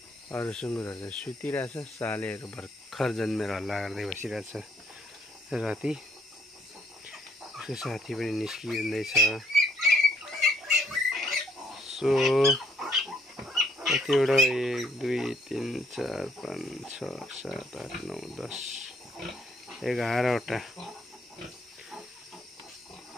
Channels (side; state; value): both; normal; correlation 0.68